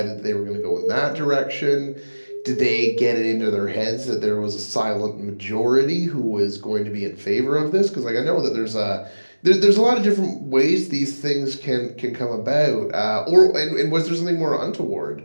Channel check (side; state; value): both; inverted; correlation -1.00